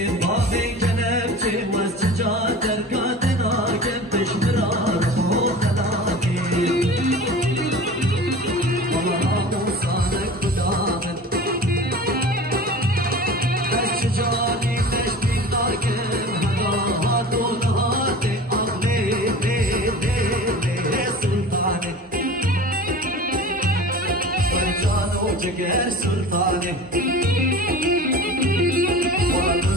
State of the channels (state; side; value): normal; both; correlation 0.37